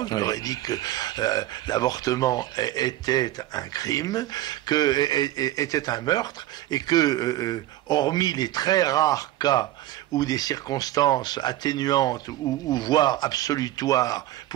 je leur ai dit que l'avortement était un crime, était un meurtre, et que, hormis les très rares cas où des circonstances atténuantes ou voire absolutoires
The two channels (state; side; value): quieter; left; 14.9 dB